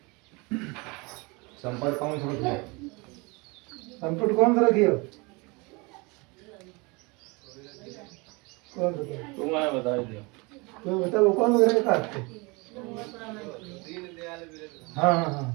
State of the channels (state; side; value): quieter; left; 27.3 dB